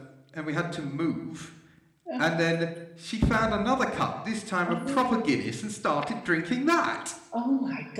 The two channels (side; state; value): both; identical; correlation 1.00